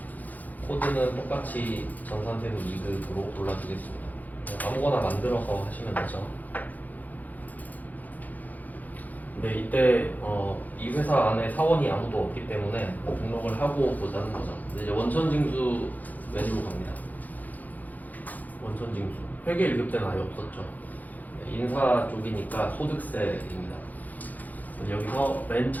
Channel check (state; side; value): late; right; 0.081 ms